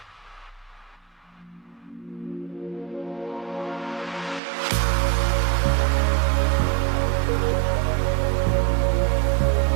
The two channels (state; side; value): drops out; left; at 4.4 s